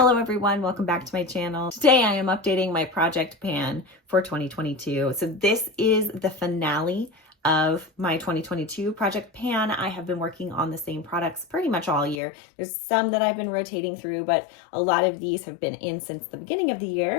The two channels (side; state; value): right; drops out; at 12.2 s